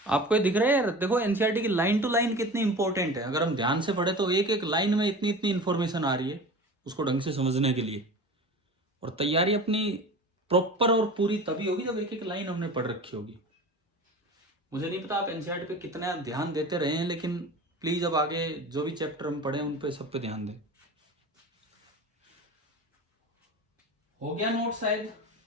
आपको ये दिख रहा है यार, देखो एनसीईआरटी की लाइन टू लाइन कितनी इंपॉर्टेंट है। अगर हम ध्यान से पढ़े तो एक एक लाइन में इतनी इतनी इंफॉर्मेशन आ रही है उसको ढंग से समझने के लिए। और तैयारी अपनी प्रॉपर और पूरी तभी होगी जब एक एक लाइन हमने पढ़ रखी होगी। मुझे नहीं पता आप एनसीईआरटी पे कितना ध्यान देते रहे हैं, लेकिन प्लीज अब आगे जो भी चैप्टर हम पढ़े उन पे सब पे ध्यान दें। हो गया नोट शायद?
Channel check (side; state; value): both; normal; correlation 0.35